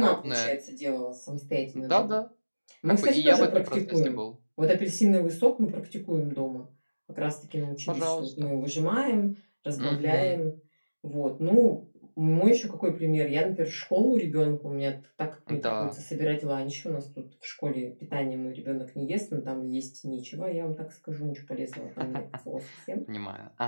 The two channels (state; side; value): inverted; both; correlation -1.00